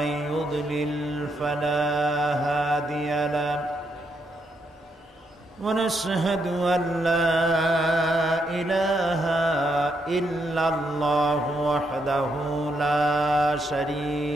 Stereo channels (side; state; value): both; normal; correlation 0.78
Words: يضلل فلا هادي له ونشهد أن لا إله إلا الله وحده لا